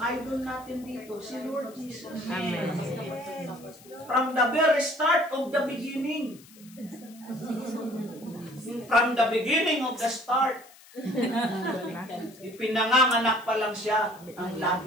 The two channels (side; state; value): left; noise; hiss, 23 dB below the sound